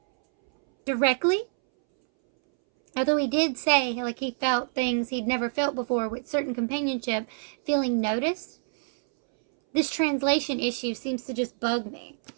directly. Although he did say, like, he felt things he'd never felt before with certain companionship, feeling noticed. This translation issue seems to just bug me.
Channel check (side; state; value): left; silent; 61 dB below the other